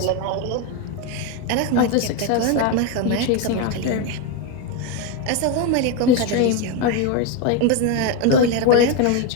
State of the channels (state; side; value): different; both; correlation 0.03